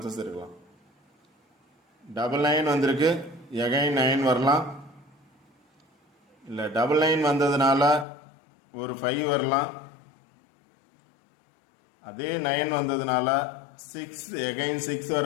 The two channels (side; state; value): right; drops out; at 8.1 s